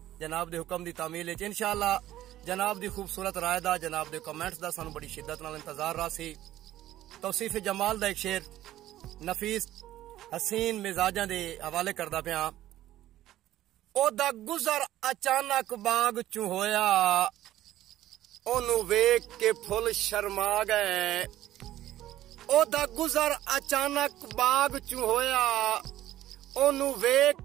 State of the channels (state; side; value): quieter; left; 13.8 dB